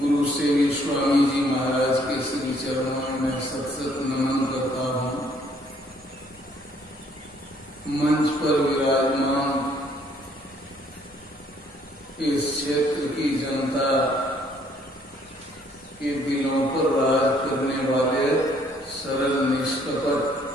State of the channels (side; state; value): both; normal; correlation 0.64